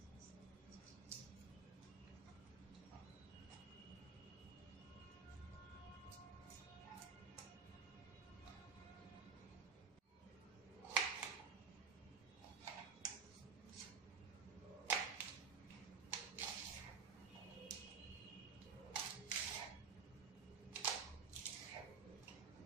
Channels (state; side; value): quieter; left; 5.8 dB